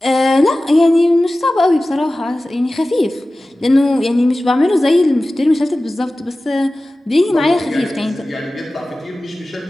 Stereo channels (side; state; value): both; normal; correlation 0.96